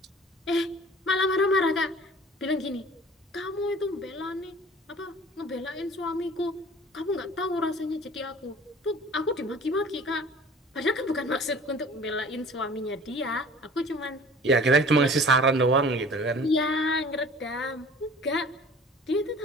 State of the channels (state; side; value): normal; both; correlation 0.46